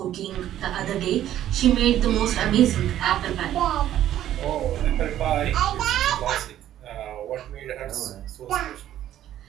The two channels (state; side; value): quieter; left; 12.1 dB